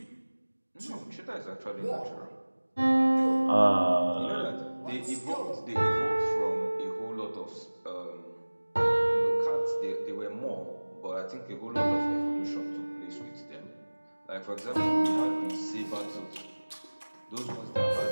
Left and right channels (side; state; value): both; inverted; correlation -1.00